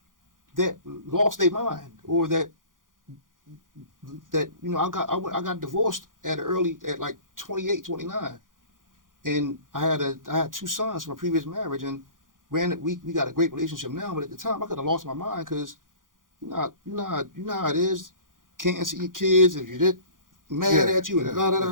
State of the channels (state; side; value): late; left; 0.89 ms